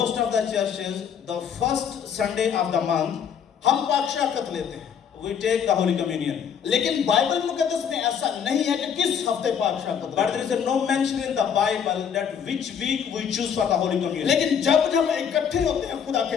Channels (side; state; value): right; quieter; 7.7 dB